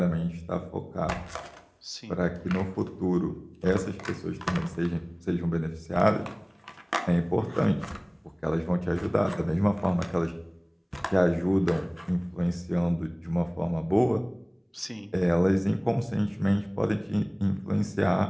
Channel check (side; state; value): both; identical; correlation 1.00